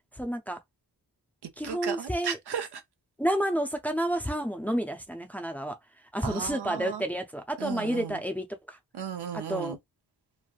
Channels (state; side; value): normal; both; correlation 0.74